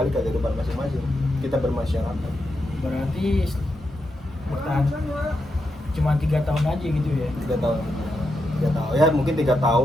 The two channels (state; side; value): normal; both; correlation 0.85